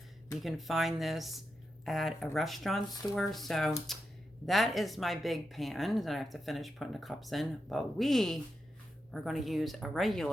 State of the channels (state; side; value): normal; both; correlation 0.87